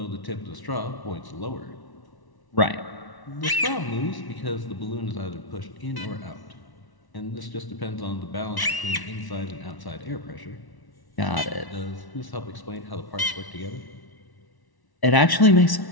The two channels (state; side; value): late; right; 1.1 ms